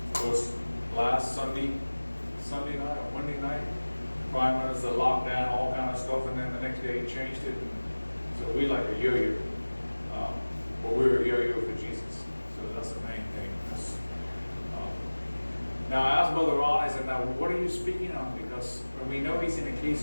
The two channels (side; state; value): both; inverted; correlation -1.00